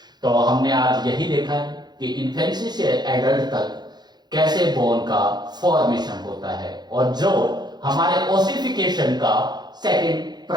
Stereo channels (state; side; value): late; left; 0.20 ms